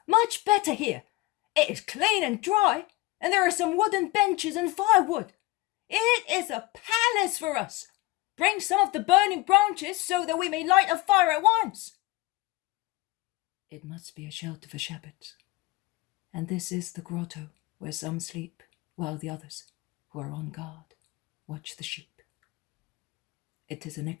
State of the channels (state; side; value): quieter; right; 19.8 dB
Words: much better here. It is clean and dry, and there are some wooden benches and firewood. It is a palace for us. Bring some of the burning branches so that we may light a fire at once. It must be a shelter for shepherds, and this is the grotto where some sleep while the others, who are on guard, watch the sheep. It is an